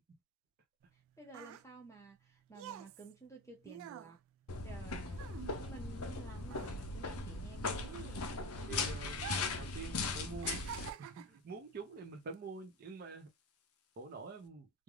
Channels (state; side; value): normal; both; correlation 0.24